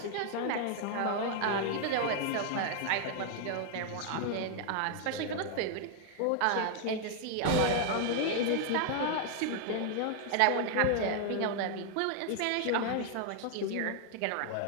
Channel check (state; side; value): different; both; correlation 0.00